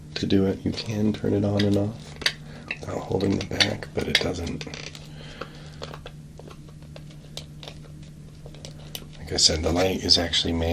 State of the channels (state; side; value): identical; both; correlation 1.00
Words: to do it. You can turn it on and off without holding the back, but it doesn't. Like I said, the light is actually